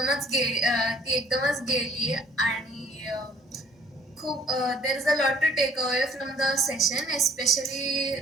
एकदमच गेली आणि खूप there is a lot to take away from the session especially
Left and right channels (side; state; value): both; normal; correlation 0.56